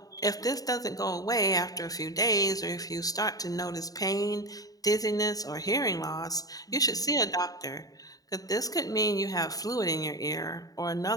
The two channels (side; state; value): right; late; 0.18 ms